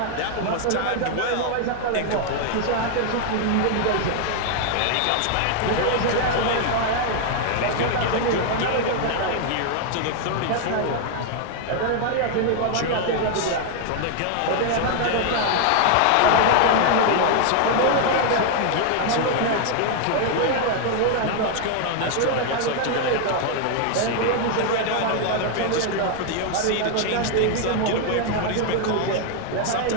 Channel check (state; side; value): different; both; correlation 0.00